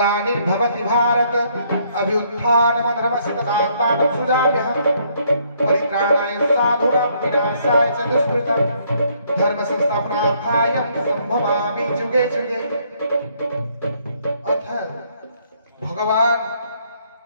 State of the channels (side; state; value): both; inverted; correlation -0.68